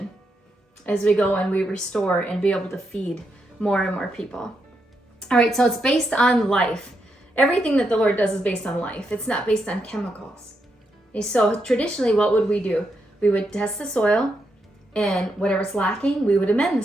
as we go and we restore and be able to feed more and more people. All right, so it's based on life. Everything that the Lord does is based on life. It's not based on chemicals. Okay, so traditionally, what would we do? We would test the soil, and whatever's lacking, we would amend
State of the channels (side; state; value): both; normal; correlation 0.82